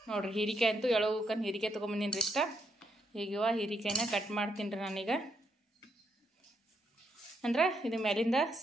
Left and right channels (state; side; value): normal; both; correlation 0.78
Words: ನೋಡ್ರಿ. ಹೀರಿಕಾಯಿ ಅಂತೂ ಎಳೋಕನ್ ಹೀರಿಕಾಯಿ ತೊಗೊಂಬಂದಿನ್ರಿ ಇಷ್ಟ. ಈಗ ಹೀರಿಕಾಯಿನ ಕಟ್ ಮಾಡ್ತೀನಿ ರೀ ನಾನೀಗ. ಅಂದ್ರೆ ಇದು ಮೇಲಿಂದ